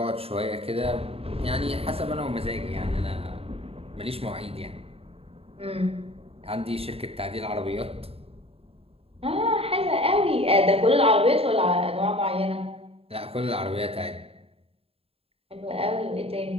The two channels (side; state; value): left; late; 0.28 ms